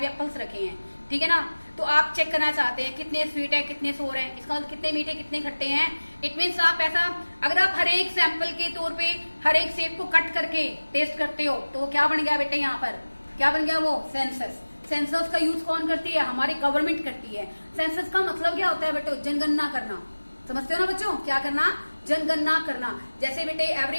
एप्पल्स रखे हैं, ठीक है ना। तो आप चेक करना चाहते हैं कितने स्वीट है कितने सोर है, इसका मतलब कितने मीठे कितने खट्टे हैं। इट मीन्स आप ऐसा, अगर आप हर एक सैंपल के तौर पे हर एक सेब को कट करके टेस्ट करते हो तो क्या बन गया बेटे, यहाँ पर क्या बन गया, वो सेंसस। सेंसस का यूज कौन करती है, हमारी गवर्नमेंट करती है। सेंसस का मतलब क्या होता है बेटे, जनगणना करना। समझते हो ना बच्चों, क्या करना, जनगणना करना। जैसे बेटे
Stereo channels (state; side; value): inverted; both; correlation -1.00